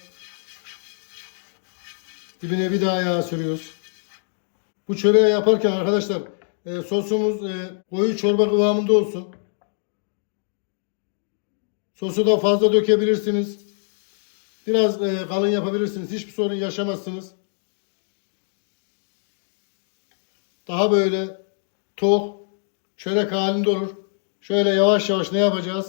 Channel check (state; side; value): silent; right; digital silence